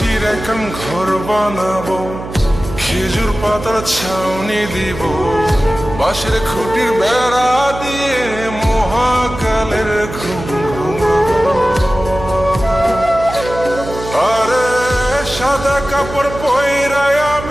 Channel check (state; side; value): noise; right; hum, 10 dB below the sound